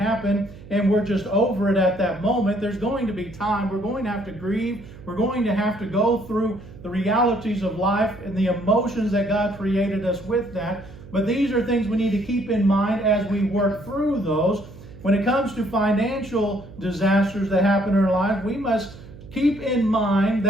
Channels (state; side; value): noise; right; hum, 18 dB below the sound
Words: and we're just over it at that moment. There's going to be time. We're going to have to grieve. We're going to have to go through the realities of life and the emotions that God created us with that. But these are things we need to keep in mind as we work through those. When it comes to financial disasters that happen in our life, we must keep in mind